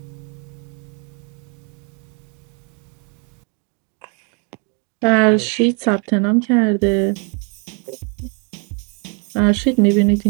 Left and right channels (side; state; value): left; quieter; 35.8 dB